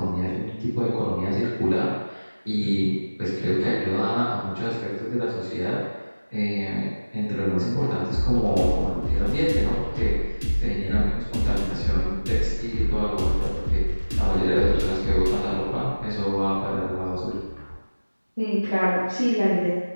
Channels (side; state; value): both; inverted; correlation -1.00